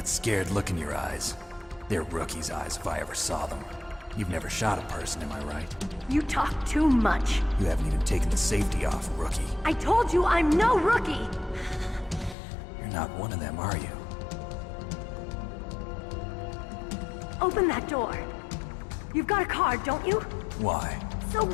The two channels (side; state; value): right; drops out; at 12.4 s